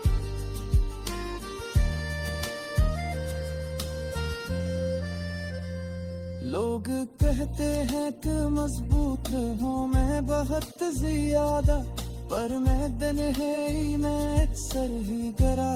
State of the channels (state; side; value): identical; both; correlation 1.00